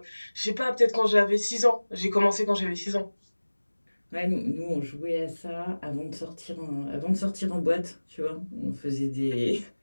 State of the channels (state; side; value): inverted; both; correlation -1.00